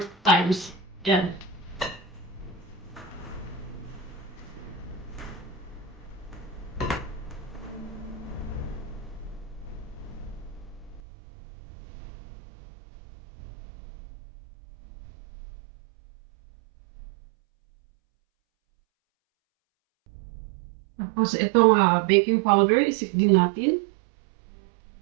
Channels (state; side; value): drops out; left; at 11.0 s